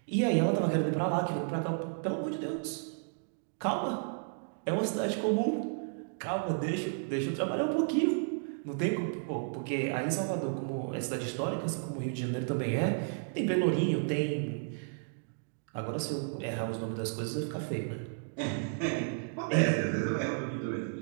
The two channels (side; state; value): left; silent; digital silence